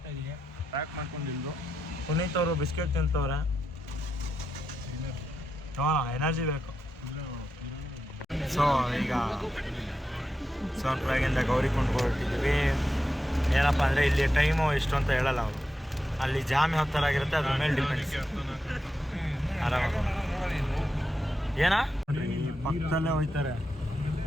ಇದೆಯಾ? ಪ್ಯಾಕ್ ಮಾಡ್ಕೊಂಡಿದ್ದು. ಪುನೀತ್ ಅವರು ಬಿಸ್ಕೆಟ್ ತಿಂತವ್ರೆ. ಹಾಂ, ಎನರ್ಜಿ ಬೇಕು. ಸೊ ಈಗ ಸೋನ್ಪ್ರಯಾಗಿಂದ ಗೌರಿಕುಂಡ್ ಹೊರಟಿದ್ವಿ. ಏನಪ್ಪ ಅಂದರೆ ಇಲ್ಲಿ ಟೈಮು ಎಷ್ಟು ಅಂತ ಹೇಳಲ್ಲ ಅವರು. ಅಲ್ಲಿ ಜಾಮ್ ಯಾವ ಥರ ಆಗಿರುತ್ತೆ ಅದ್ರ ಮೇಲೆ ಡಿಪೆಂಡ್ಸ್. ಆರಾಮಾಗ ಏನಾ ಈ ಪಕ್ಕದಲ್ಲೇ ಹೋಯ್ತಾರೆ.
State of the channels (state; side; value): normal; both; correlation 0.87